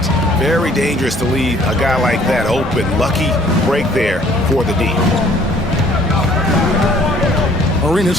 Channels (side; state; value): both; normal; correlation 0.58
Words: Very dangerous to leave a guy like that open. Lucky break there for the D.